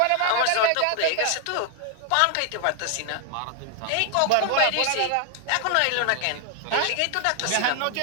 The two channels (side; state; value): both; different; correlation 0.00